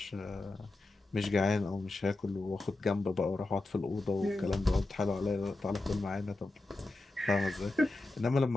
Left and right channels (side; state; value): right; quieter; 3.0 dB